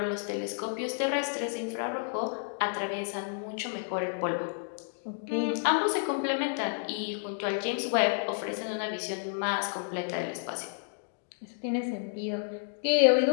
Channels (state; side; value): silent; right; digital silence